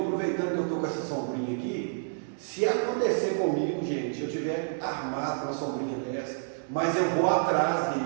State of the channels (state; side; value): silent; left; digital silence